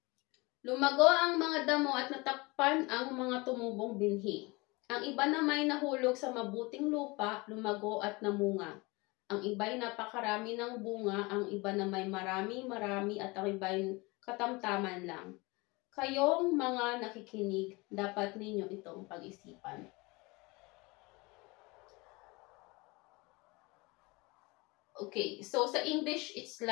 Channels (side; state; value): right; quieter; 25.0 dB